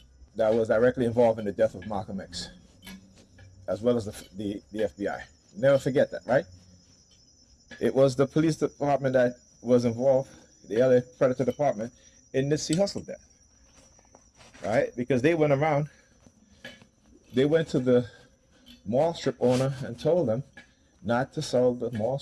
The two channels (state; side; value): identical; both; correlation 1.00